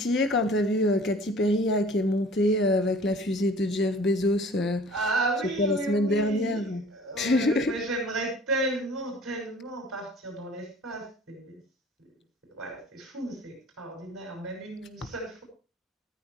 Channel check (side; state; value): both; normal; correlation 0.48